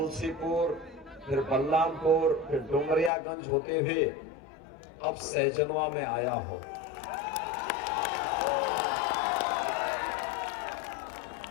फिर बलरामपुर, फिर डुमरियागंज होते हुए अब सहजनवा में आया हूं।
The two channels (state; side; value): drops out; right; at 3.1 s